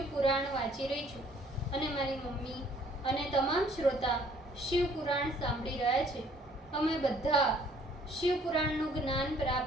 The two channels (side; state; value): both; normal; correlation 0.59